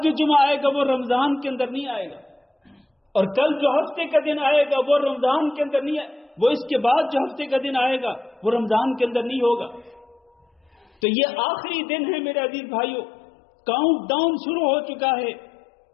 جو جمعہ آئے گا وہ رمضان کے اندر نہیں آئے گا، اور کل جو ہفتے کا دن آئے گا وہ رمضان کے اندر نہیں وہ اس کے بعد جو ہفتے کا دن آئے گا وہ رمضان کے اندر نہیں ہوگا۔ تو یہ آخری دن ہے میرے عزیز بھائیوں، کاؤنٹ ڈاؤن شروع ہو چکا ہے۔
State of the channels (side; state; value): right; drops out; at 10.9 s